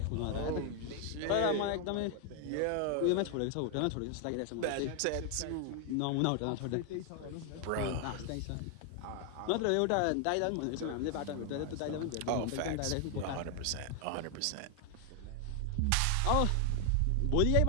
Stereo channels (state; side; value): different; both; correlation 0.00